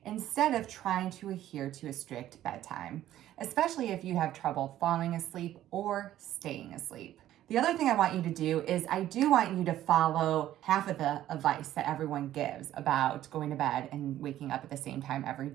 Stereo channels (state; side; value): quieter; left; 12.9 dB